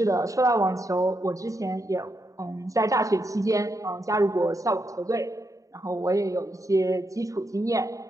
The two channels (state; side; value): late; left; 0.16 ms